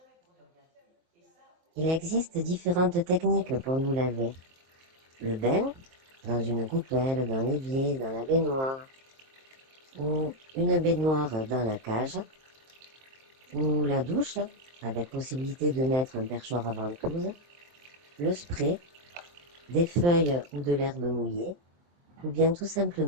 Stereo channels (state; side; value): late; left; 23 ms